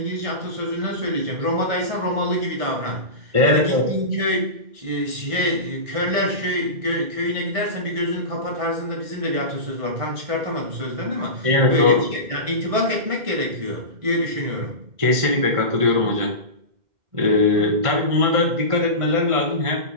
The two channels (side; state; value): left; late; 1.6 ms